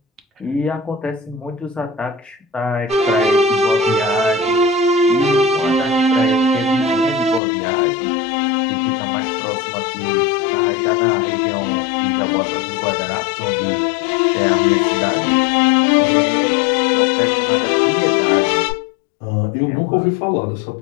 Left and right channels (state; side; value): drops out; right; at 7.4 s